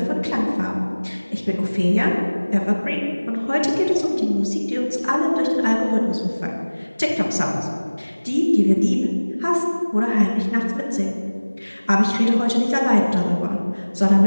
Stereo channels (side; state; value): both; inverted; correlation -1.00